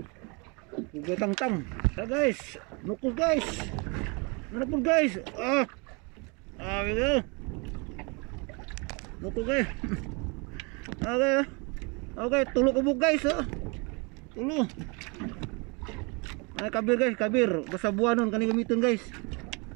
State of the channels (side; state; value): left; quieter; 30.9 dB